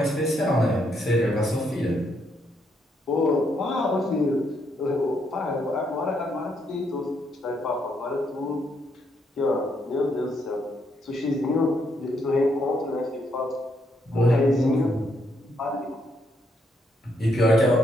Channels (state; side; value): normal; both; correlation 0.75